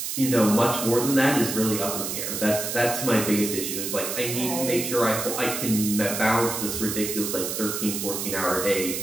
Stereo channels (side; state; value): right; noise; hiss, 4 dB below the sound